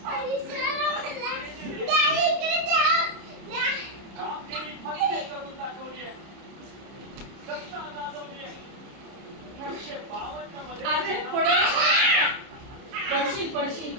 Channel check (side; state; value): left; late; 30 ms